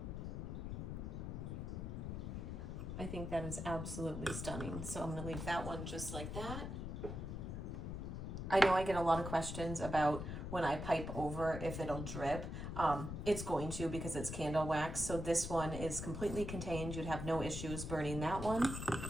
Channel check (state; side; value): noise; left; rumble, 5 dB below the sound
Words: I think that is absolutely stunning. So I'm gonna leave that one just like that. I know I get a lot of questions about when I pipe over if it'll drip. It's going to, because it's candle wax. So this one is completely contained. You'd have no issues burning that one.